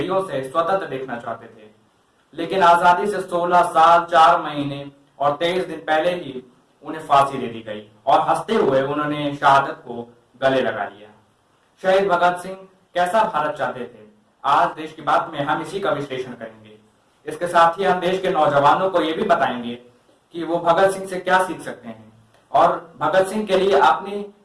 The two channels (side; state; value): both; identical; correlation 1.00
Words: से स्वतंत्र देखना चाहते थे, लेकिन आजादी से 16 साल 4 महीने और 23 दिन पहले ही उन्हें फांसी दे दी गई और हंसते हुए उन्होंने शहादत को गले लगा लिया। शहीद भगत सिंह कैसा भारत चाहते थे, आज देश की बात में हम इसी का विश्लेषण करेंगे। इसके साथ ही हम देश के नौजवानों को यह भी बताएंगे कि वो भगत सिंह से क्या सीख सकते हैं और भगत सिंह के लिए अपनी